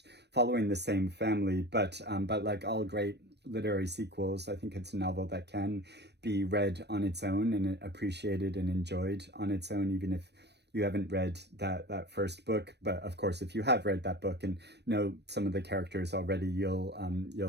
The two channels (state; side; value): late; left; 0.49 ms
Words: following the same family. But like all great literary sequels, I think it's a novel that can be read on its own and appreciated and enjoyed on its own, even if you haven't read that first book. But of course, if you have read that book and know some of the characters already,